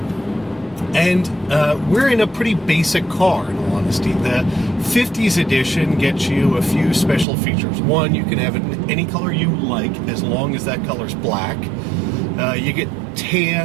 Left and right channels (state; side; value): drops out; left; at 7.2 s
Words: And we're in a pretty basic car, in all honesty. The 50s edition gets you a few special features. One, you can have it in any color you like, as long as that color's black. You get